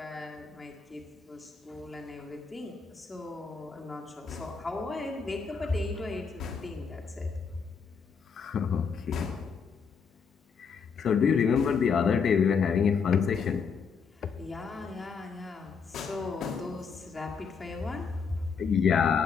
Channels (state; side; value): quieter; right; 5.9 dB